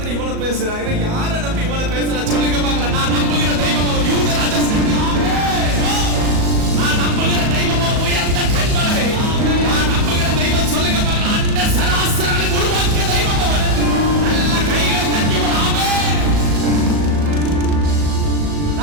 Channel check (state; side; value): late; left; 37 ms